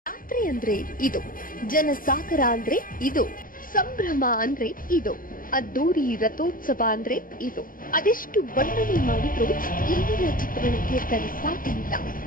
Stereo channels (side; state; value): right; late; 0.40 ms